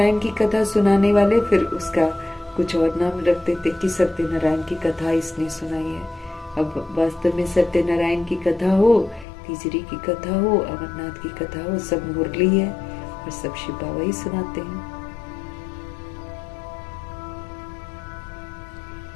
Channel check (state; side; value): drops out; right; at 9.2 s